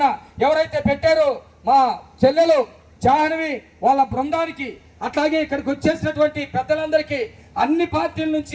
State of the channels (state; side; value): identical; both; correlation 1.00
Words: ఎవరైతే పెట్టారో మా చెల్లెలు జాహ్నవి వాళ్ళ బృందానికి, అట్లాగే ఇక్కడికి వచ్చేసినటువంటి పెద్దలందరికీ, అన్ని పార్టీల